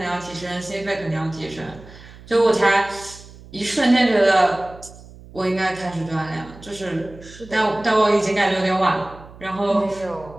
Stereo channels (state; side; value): noise; right; hum, 19 dB below the sound